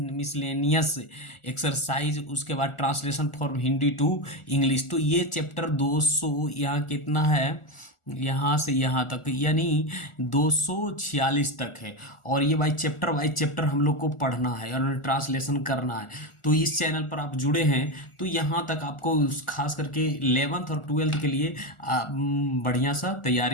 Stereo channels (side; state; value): right; late; 1.4 ms